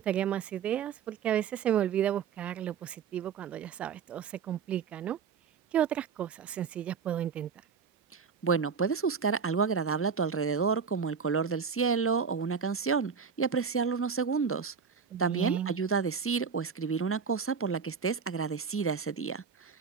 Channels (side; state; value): left; quieter; 6.3 dB